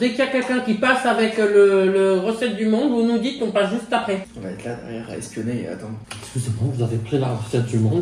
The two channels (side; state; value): both; identical; correlation 1.00